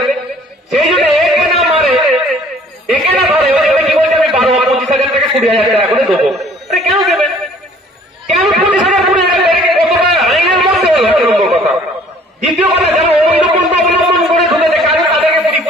সেই জন্য একে না মারে, একে না ধরে, কি বলছে আমি 12-25,000 টাকা 20,000 টাকা করে দেবো। আরে কেন দেবেন? কেন 20,000 20,000 টাকা কতটা আইনের মধ্যে হলো? একটা নম্বর কথা। দ্বিতীয় কথা, যারা অবৈধ পন্থা অবলম্বন করে ঢুকেছে তাদেরকে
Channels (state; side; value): normal; both; correlation 0.55